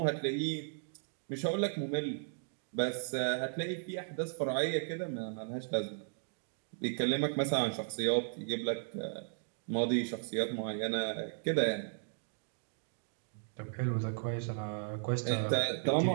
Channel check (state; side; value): silent; left; digital silence